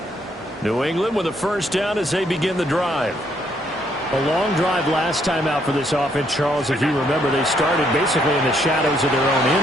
New England with a 1st down as they begin the drive. A long drive last time out for this offense, Charles. If you remember, they started basically in the shadows of their own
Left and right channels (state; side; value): normal; both; correlation 0.71